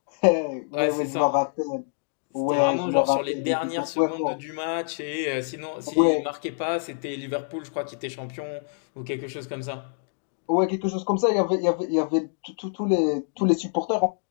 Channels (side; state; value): right; silent; digital silence